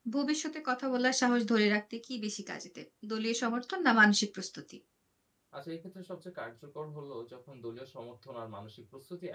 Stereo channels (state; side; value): identical; both; correlation 1.00